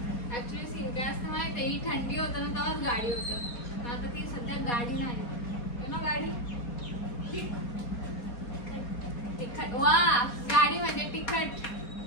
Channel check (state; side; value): late; right; 4.2 ms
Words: ऍक्च्युली सीन काय असतं माहिती आहे, ही थंडी होतं ना तेव्हाच गाडी होतं. पण आता ती सध्या गाडी नाही. गाडी तिखट. वा गाडी म्हणजे तिखट.